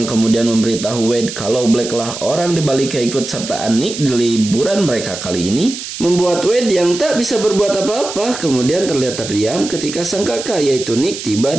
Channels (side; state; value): right; noise; hiss, 9 dB below the sound